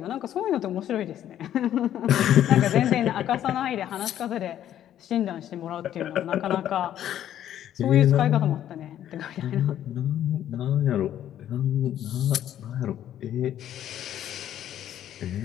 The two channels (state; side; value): quieter; right; 11.2 dB